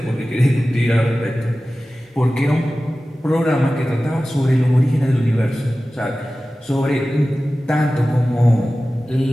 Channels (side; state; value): both; normal; correlation 0.96